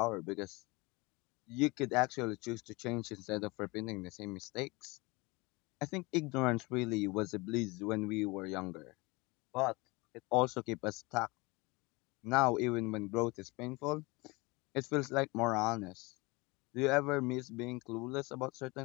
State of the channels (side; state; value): right; quieter; 24.9 dB